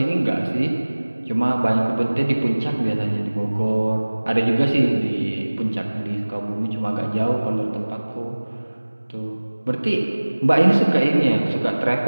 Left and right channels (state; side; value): inverted; both; correlation -1.00